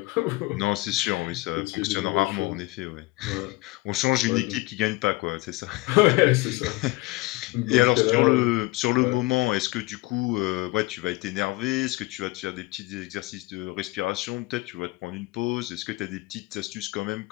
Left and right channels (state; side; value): quieter; right; 21.3 dB